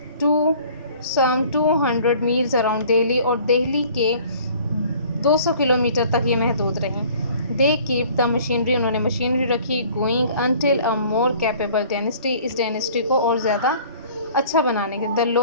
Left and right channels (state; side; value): inverted; both; correlation -0.52